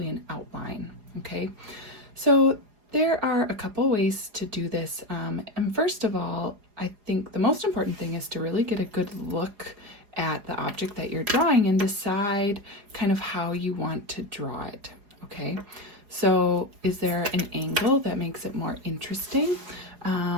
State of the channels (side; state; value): left; late; 4.8 ms